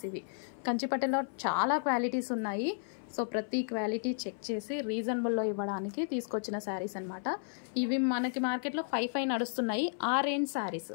ఇవి. కంచిపట్టులో చాలా క్వాలిటీస్ ఉన్నాయి. సో ప్రతి క్వాలిటీ చెక్ చేసి రీజనబుల్లో ఇవ్వడానికి తీసుకొచ్చిన శారీస్ అనమాట. ఇవి మనకి మార్కెట్లో 5,500 నడుస్తున్నాయి. ఆ రేంజ్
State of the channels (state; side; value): silent; right; 56 dB below the other